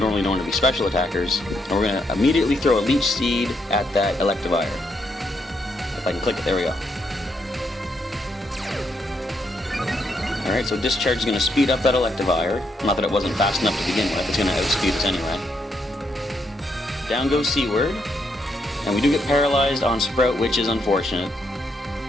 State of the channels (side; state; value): both; normal; correlation 0.77